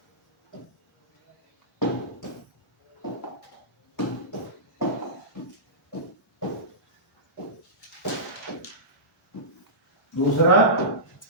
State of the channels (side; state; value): both; normal; correlation -0.18